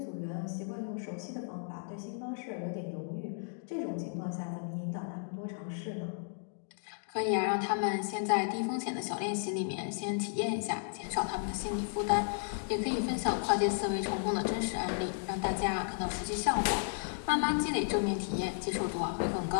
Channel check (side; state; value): right; silent; digital silence